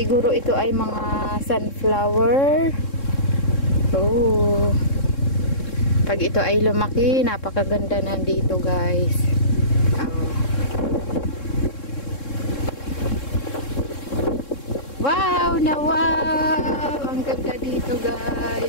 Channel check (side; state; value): right; late; 3.7 ms